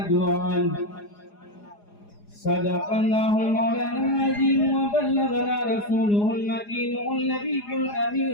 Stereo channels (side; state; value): right; late; 4.9 ms